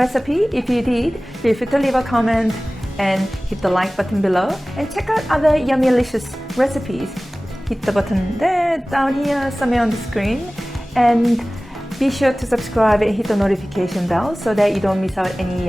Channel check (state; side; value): normal; both; correlation 0.98